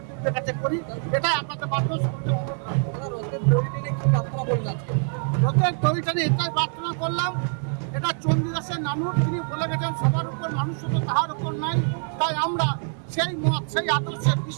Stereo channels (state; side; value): silent; left; 57 dB below the other